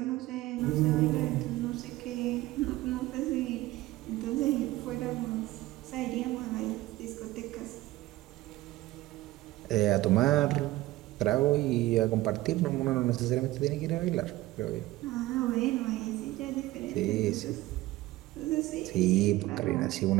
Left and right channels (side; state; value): left; quieter; 17.5 dB